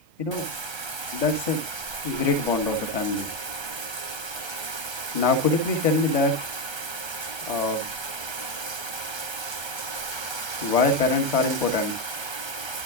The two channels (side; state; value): left; late; 1.3 ms